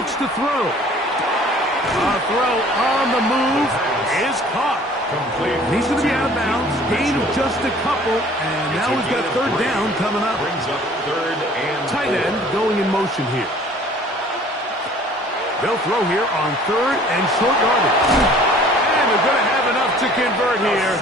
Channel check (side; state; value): both; normal; correlation 0.52